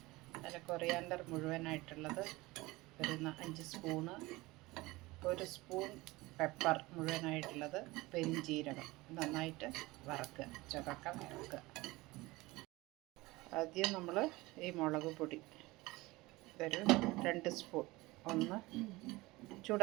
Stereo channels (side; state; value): left; quieter; 21.0 dB